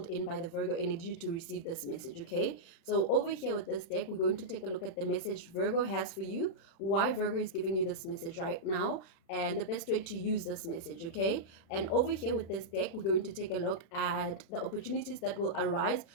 in by the Virgo energy to receive this message. Okay, so over here with this deck, we're going to take a look at the message Virgo has for you, why Virgo is giving you this message right now, and the best way to use this message. Okay, and over here with this deck, we're going to take a look at the opportunities that will arise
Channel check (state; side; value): late; right; 36 ms